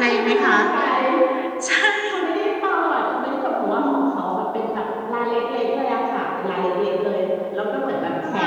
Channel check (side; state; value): both; identical; correlation 1.00